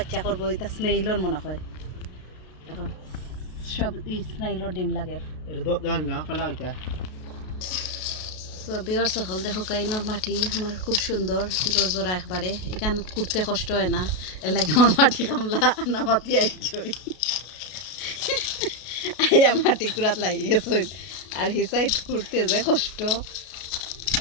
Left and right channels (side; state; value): right; late; 33 ms